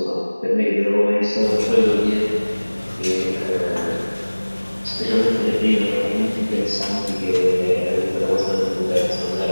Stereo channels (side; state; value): both; inverted; correlation -1.00